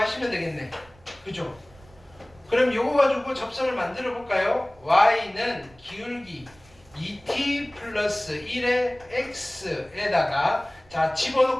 되겠네. 그죠? 그럼 요거 가지고 접선을 만들어 볼까요? y는 기울기 2t 플러스 1의 x에다가 자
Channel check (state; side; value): noise; right; rumble, 26 dB below the sound